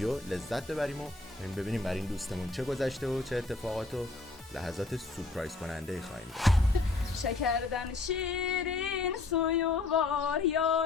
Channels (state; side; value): quieter; right; 3.5 dB